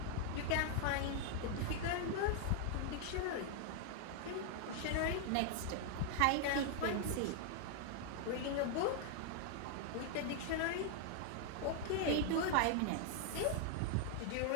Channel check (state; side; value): different; both; correlation 0.00